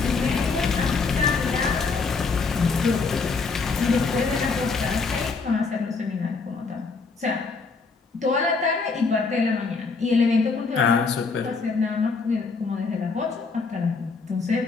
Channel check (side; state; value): right; quieter; 4.5 dB